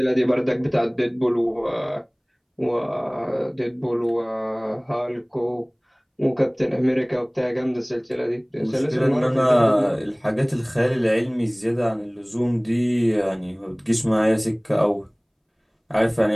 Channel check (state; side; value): identical; both; correlation 1.00